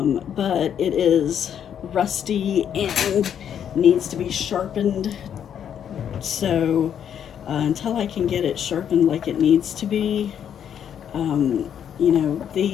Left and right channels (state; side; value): quieter; right; 8.9 dB